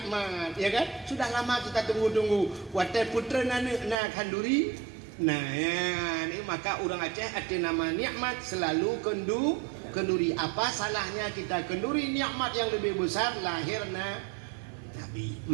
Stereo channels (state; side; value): drops out; left; at 4.0 s